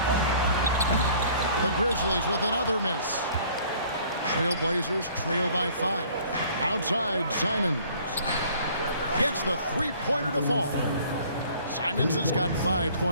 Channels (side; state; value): both; inverted; correlation -0.54